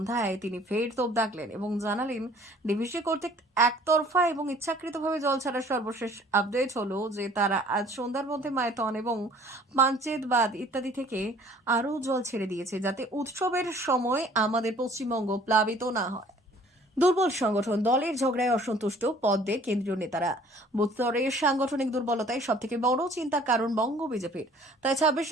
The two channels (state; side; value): normal; both; correlation 0.54